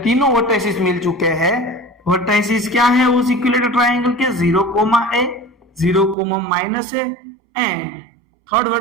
तीनों वर्टाइसिस मिल चुके हैं। वर्टाइसिस क्या है उस इक्विलेटरल ट्रायंगल के? 0, a, 0, माइनस है, एंड थर्ड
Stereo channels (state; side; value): drops out; left; at 6.2 s